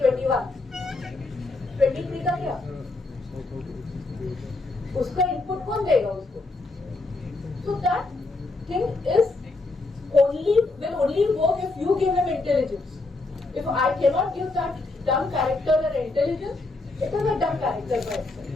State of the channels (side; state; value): right; quieter; 3.3 dB